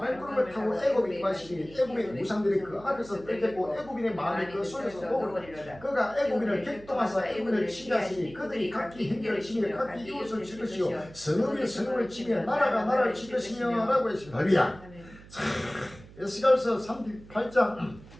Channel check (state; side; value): noise; right; hum, 20 dB below the sound